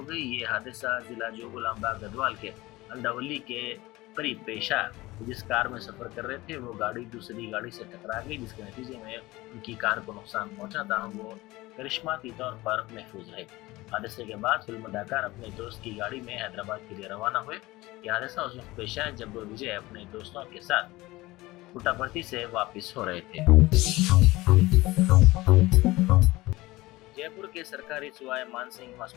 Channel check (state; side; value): quieter; right; 19.7 dB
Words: गई। ये हादसा जिला जोगुलांबा गढ़वाल के अंडावली के करीब पेश आया। जिस कार में सफर कर रहे थे वो गाड़ी दूसरी गाड़ी से टकरा गई, जिसके नतीजे में उनकी कार को नुकसान पहुंचा था। वो करिश्माती तौर पर महफूज रहे। हादसे के बाद फिल्म अदाकार अपने दोस्त की गाड़ी में हैदराबाद के लिए रवाना हुए। यह हादसा उस वक्त पेश आया जब विजय अपने दोस्तों के साथ पुट्टापर्थी से वापस हो रहे थे। जयपुर के सरकारी सुवाय मानसिंह